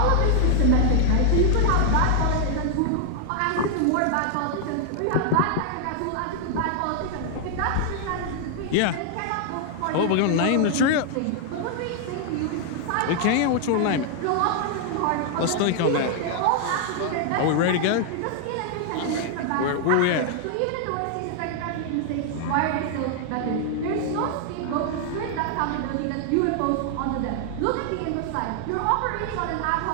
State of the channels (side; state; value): both; different; correlation 0.00